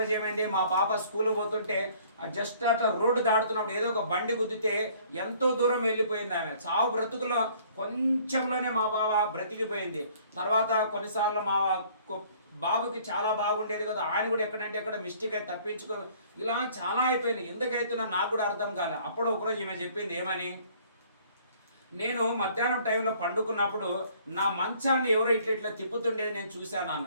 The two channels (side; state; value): both; inverted; correlation -0.57